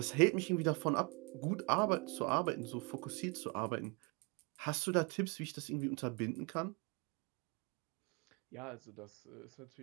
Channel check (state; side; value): quieter; left; 31.0 dB